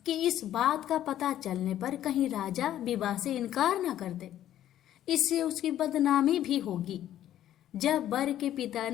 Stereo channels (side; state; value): right; quieter; 12.0 dB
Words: कि इस बात का पता चलने पर कहीं राजा विवाह से इनकार न कर दे, इससे उसकी बदनामी भी होगी। जब वर के पिता